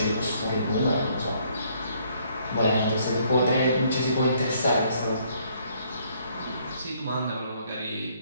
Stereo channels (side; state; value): both; inverted; correlation -0.66